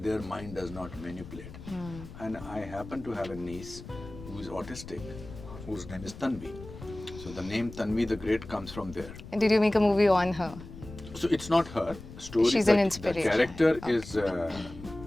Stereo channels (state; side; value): noise; left; rumble, 14 dB below the sound